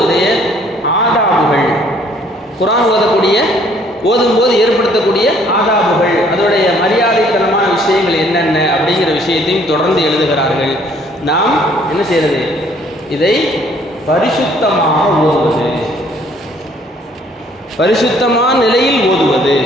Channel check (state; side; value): normal; both; correlation 0.61